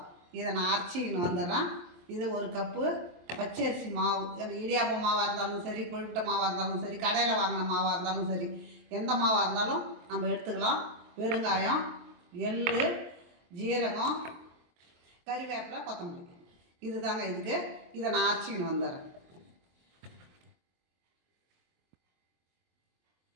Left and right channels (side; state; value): left; late; 23 ms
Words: இதை நான் அரைச்சிக்கின்னு வந்துடுறேன். இது ஒரு கப்பு பச்சரிசி மாவு, இடியாப்ப மாவாக இருந்தாலும் சரி, கொழுக்கட்டை மாவாக இருந்தாலும் சரி, கடையில் வாங்கின மாவாக இருந்தாலும் சரி, எந்த மாவாக இருந்தாலும் நம்ம எடுத்துக்கலாம். பெருங்காயம், எள், ஜீரகம், கறிவேப்பிலை, கொத்தமல்லி, இது தாங்க இதுக்கு. இதை நான் அரைச்சிக்கின்னு வந்துடுறேன்.